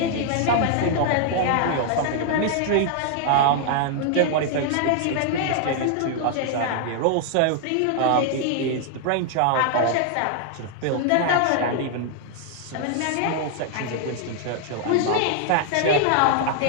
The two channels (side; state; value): both; different; correlation 0.00